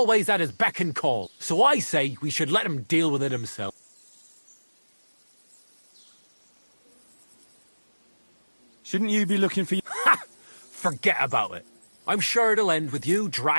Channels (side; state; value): both; inverted; correlation -1.00